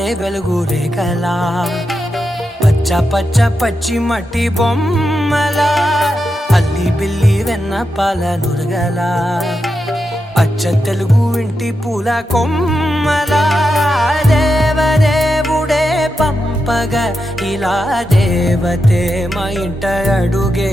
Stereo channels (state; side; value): normal; both; correlation 0.87